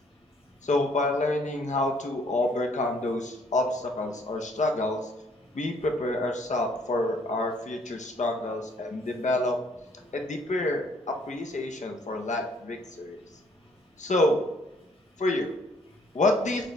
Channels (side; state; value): both; normal; correlation 0.63